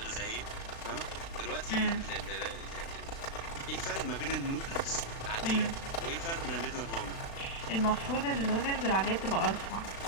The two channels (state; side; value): late; right; 36 ms